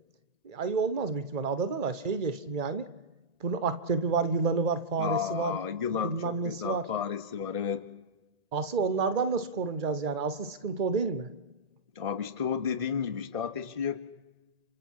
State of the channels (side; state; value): left; late; 1.8 ms